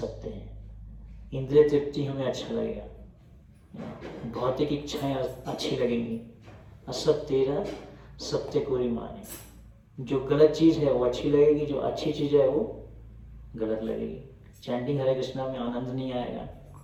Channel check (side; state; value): both; identical; correlation 1.00